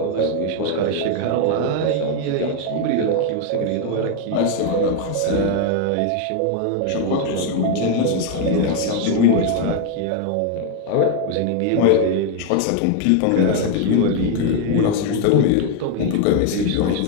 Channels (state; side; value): different; both; correlation 0.01